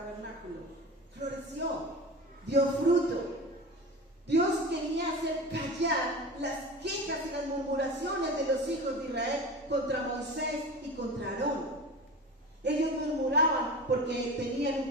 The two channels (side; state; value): both; normal; correlation 0.32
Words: Floreció, dio fruto. Dios quería hacer callar las quejas y las murmuraciones de los hijos de Israel contra Moisés y contra Aarón. Ellos murmuraban porque tenían